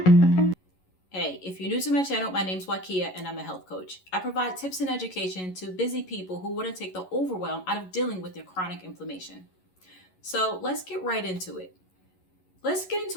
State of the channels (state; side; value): late; right; 11 ms